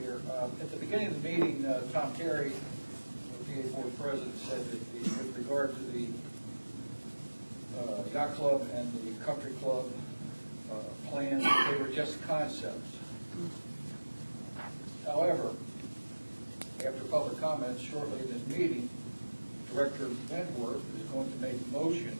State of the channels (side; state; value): both; inverted; correlation -1.00